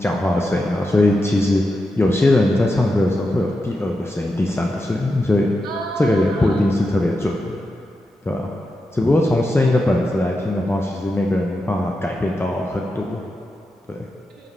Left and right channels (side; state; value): both; normal; correlation 0.88